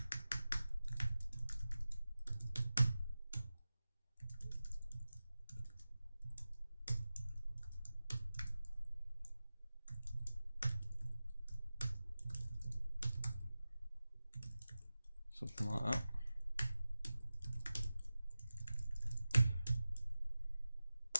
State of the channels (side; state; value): both; inverted; correlation -0.95